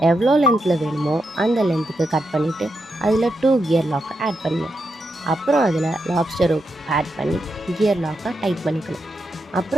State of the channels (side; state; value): both; normal; correlation 0.84